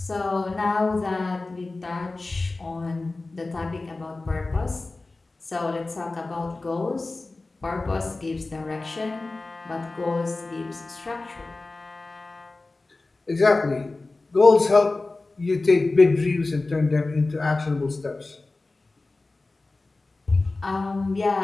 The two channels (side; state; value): right; quieter; 3.3 dB